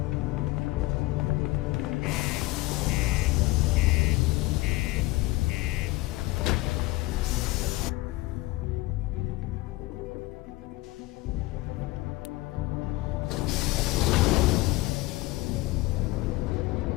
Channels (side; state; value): right; quieter; 19.9 dB